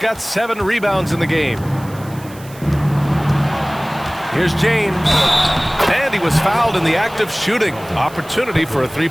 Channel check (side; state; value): right; noise; hiss, 21 dB below the sound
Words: 7 rebounds in the game. Here's James. And he was fouled in the act of shooting. Opportunity for a